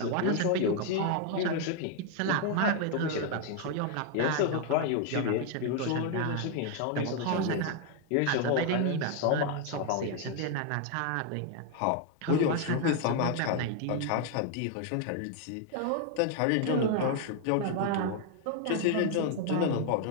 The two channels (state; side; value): different; both; correlation 0.01